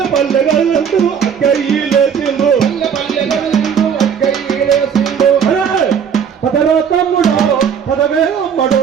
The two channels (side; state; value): left; quieter; 7.4 dB